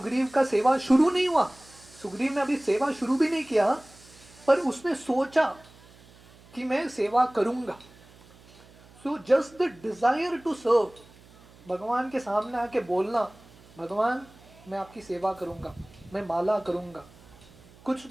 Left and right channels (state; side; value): noise; right; hum, 25 dB below the sound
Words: का सेवा शुरू नहीं हुआ, सुग्रीव ने अभी सेवा शुरू भी नहीं किया, पर उसने सोचा कि मैं सेवा करूंगा। So just the desire to serve, भगवान के सामने आके बोलना, भगवान मैं आपकी सेवा करूंगा, मैं माला करूंगा, कुछ